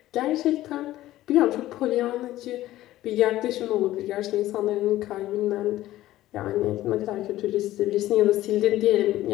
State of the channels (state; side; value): quieter; right; 15.0 dB